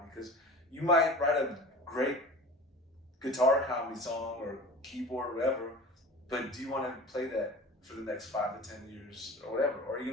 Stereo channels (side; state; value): both; normal; correlation 0.37